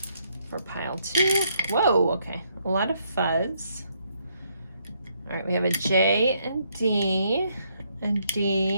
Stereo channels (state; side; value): inverted; both; correlation -0.73